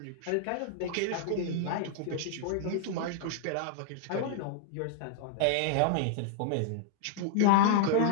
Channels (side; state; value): both; different; correlation -0.01